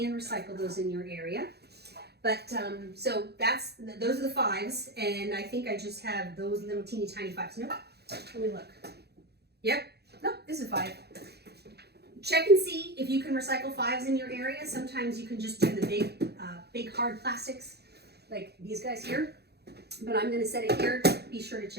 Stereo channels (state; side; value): late; left; 0.48 ms